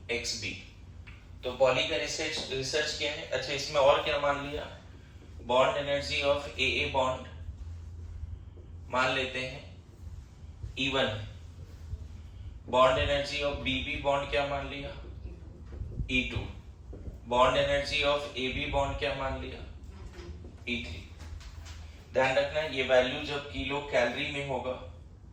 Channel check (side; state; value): both; identical; correlation 1.00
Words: X B. तो पॉली का रिसर्च किया है। अच्छा, इसमें और क्या मान लिया, bond energy of A bond मान लेते हैं E1। Bond energy of B bond क्या मान लिया, E2। Bond energy of AB bond क्या मान लिया, E3। ध्यान रखना, ये वैल्यू जब किलो कैलोरी में होगा,